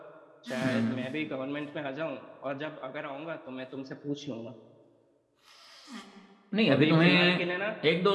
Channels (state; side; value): identical; both; correlation 1.00